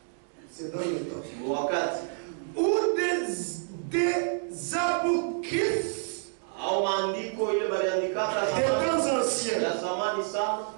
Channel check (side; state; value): left; silent; 59 dB below the other